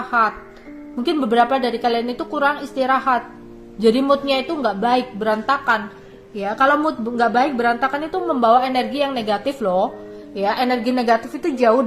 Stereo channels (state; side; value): identical; both; correlation 1.00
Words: Mungkin beberapa dari kalian itu kurang istirahat, jadi moodnya itu nggak baik, berantakan, ya. Kalau mood nggak baik, berantakan itu membawa energi yang negatif loh, ya. Energi negatif itu jauh